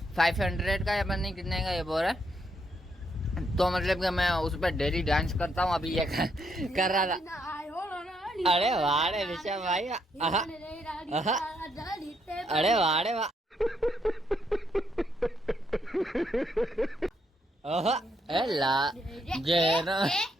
500 का या पता नहीं कितने का ये बोल रहा है, तो मतलब कि मैं उस पर डेली डांस करता हूँ। अभी ये कर रहा था। अरे वाह रे ऋषभ भाई, अरे वाह रे वाह,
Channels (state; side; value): normal; both; correlation 0.76